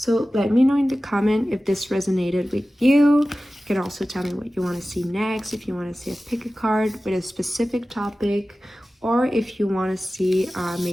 let me know in the comment if this resonated with you. You can also tell me what you want to see next, if you want to see a pick a card with a specific topic, or if you want to see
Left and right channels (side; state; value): both; normal; correlation 0.96